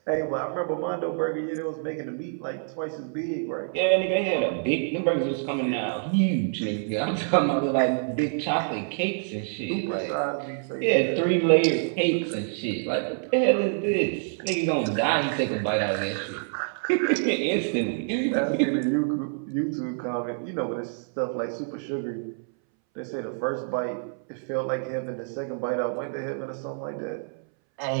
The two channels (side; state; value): left; silent; 60 dB below the other